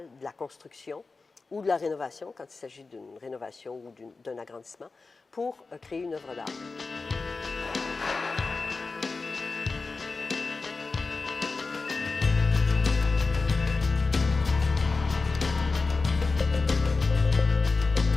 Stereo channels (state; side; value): quieter; right; 4.0 dB